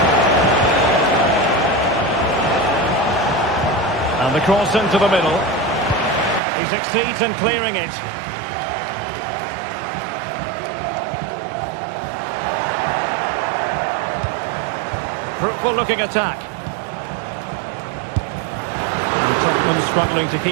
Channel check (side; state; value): left; drops out; at 6.4 s